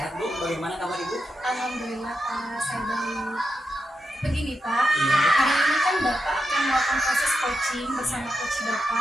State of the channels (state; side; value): normal; both; correlation 0.87